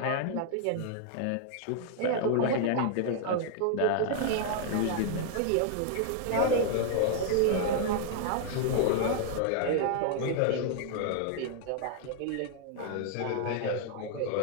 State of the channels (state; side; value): different; both; correlation 0.00